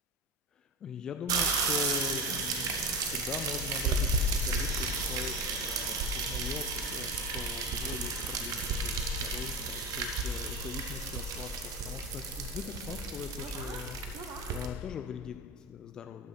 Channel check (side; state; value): both; normal; correlation 0.23